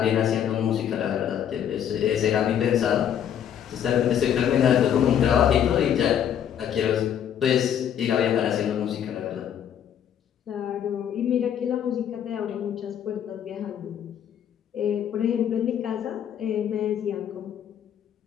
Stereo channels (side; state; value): right; quieter; 9.4 dB